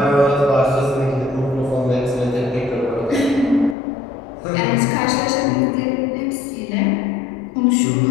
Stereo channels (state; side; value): drops out; right; at 3.8 s